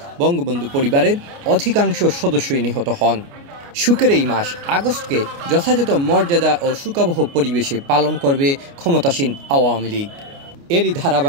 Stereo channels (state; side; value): late; left; 29 ms